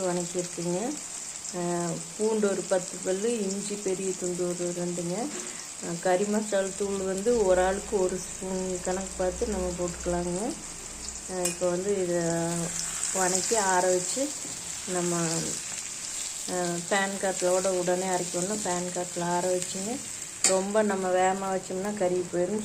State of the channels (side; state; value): both; identical; correlation 1.00